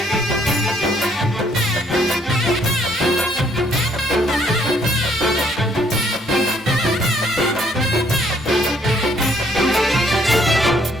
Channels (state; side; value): normal; both; correlation 0.66